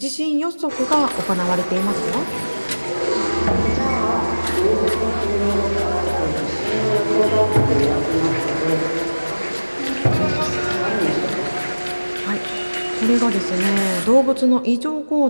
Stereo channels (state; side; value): inverted; both; correlation -1.00